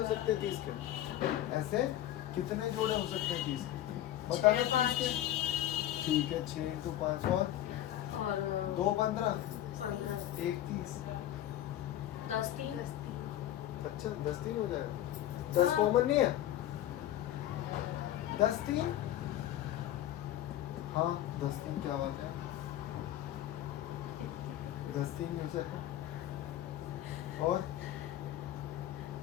सकते हैं 30 के, ऐसे कितने जोड़े हो सकते हैं 30 के, बता दो। 5 ठीक है, 6 इंटू 5 और 2 15, 15 1 30, 10 3 अच्छा 10 3 हो जाएगा। 10 कॉमन नहीं है, 10 3, हाँ 10 3, क्या बात है, 10 3 में से और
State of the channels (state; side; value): quieter; right; 12.8 dB